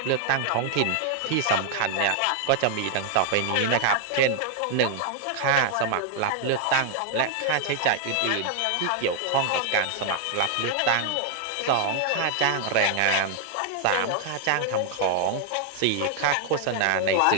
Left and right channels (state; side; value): different; both; correlation 0.00